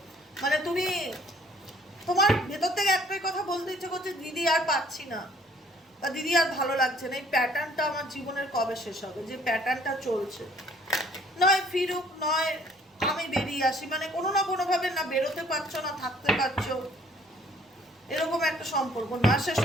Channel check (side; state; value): both; normal; correlation 0.59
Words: মানে তুমি, তোমার ভেতর থেকে একটাই কথা বলতে ইচ্ছে করছে, দিদি আর পাচ্ছি না বা দিদি আর ভালো লাগছে না, এই প্যাটার্নটা আমার জীবনের কবে শেষ হবে, যে প্যাটার্নটা চলছে। নয় ফিরুক, নয় আমি বেরিয়ে আসি, মানে কোনো না কোনোভাবে না বেরোতে পারছো না থাকতে পারছো, এরকম একটা সম্পর্ক। না সে